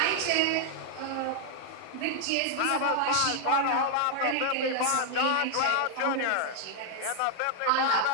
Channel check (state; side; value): different; both; correlation 0.00